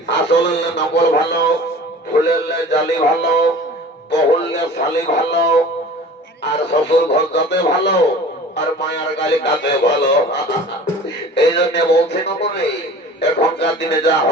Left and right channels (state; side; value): normal; both; correlation 0.42